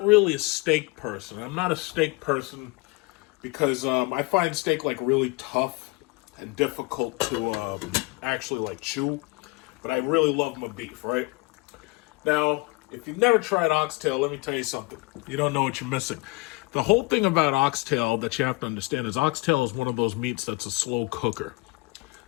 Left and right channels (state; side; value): quieter; right; 25.3 dB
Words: really a steak person. I'm not a steak person because I find steak like really tough and difficult to actually like chew. But I really love my beef, right? Now, if you've never tried oxtail, let me tell you something. You don't know what you're missing. The whole thing about oxtail that you have to understand is oxtail is one of those meats that's a slow cooker.